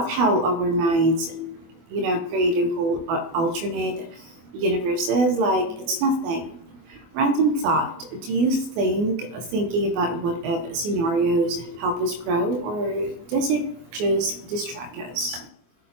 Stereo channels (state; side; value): late; left; 24 ms